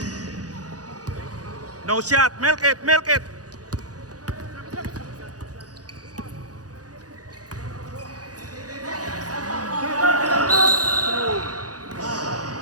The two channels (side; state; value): left; late; 0.68 ms